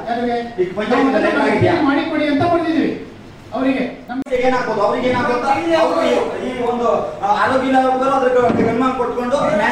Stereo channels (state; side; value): identical; both; correlation 1.00